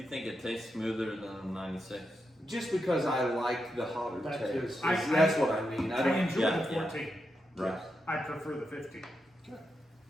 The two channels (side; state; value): both; normal; correlation 0.86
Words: think it tastes smoother than 96? just because I like the hotter That taste. is- That's what I mean. I I don't. enjoy yeah, the yeah. 14. Right. I prefer the 15. Okay.